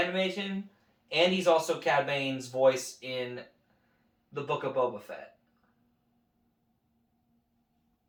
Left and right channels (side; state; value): both; identical; correlation 1.00